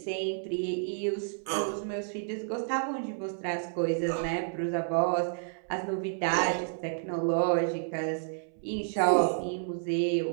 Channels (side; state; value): left; silent; 58 dB below the other